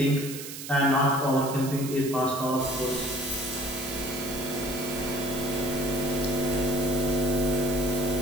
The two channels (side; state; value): right; noise; hiss, 10 dB below the sound